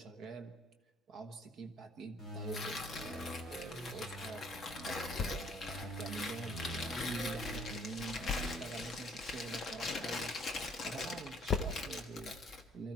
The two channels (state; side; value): normal; both; correlation 0.61